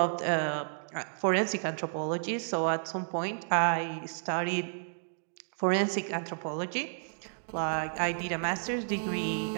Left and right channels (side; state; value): left; silent; digital silence